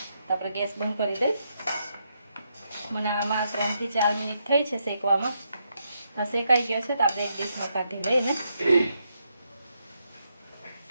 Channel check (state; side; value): inverted; both; correlation -0.80